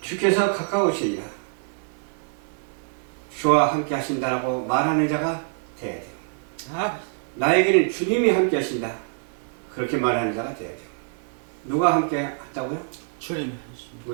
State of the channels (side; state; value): left; silent; digital silence